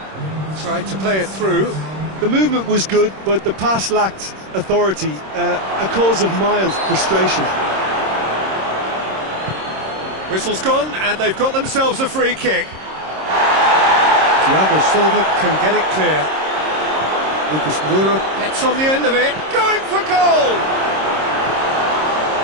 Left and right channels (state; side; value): late; left; 26 ms